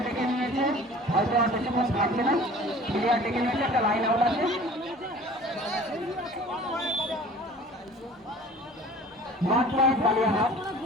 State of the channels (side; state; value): both; normal; correlation 0.46